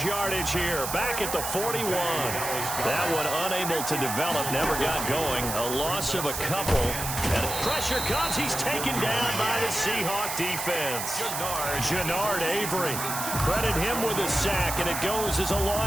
yardage here. Back at the 41. That one unable to develop. Never got going. A loss of a couple. And pressure comes. He's taken down by the Seahawk defense. Jannard Avery. Credit him with a sack. And it goes as a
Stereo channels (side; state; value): right; noise; hiss, 4 dB below the sound